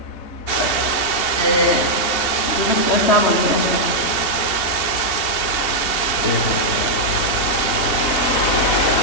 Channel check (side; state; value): right; late; 2.8 ms